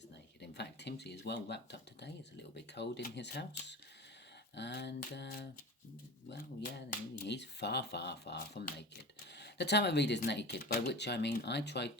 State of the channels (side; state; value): both; normal; correlation 0.32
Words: naked. In fact, Timsy is well wrapped up today. It's a little bit cold in his house. And, he's far from naked. The tarot reader's naked, by which I mean I try